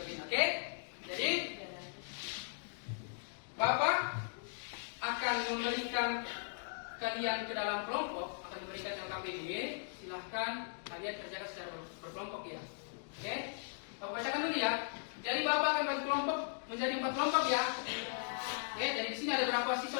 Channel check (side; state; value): right; silent; digital silence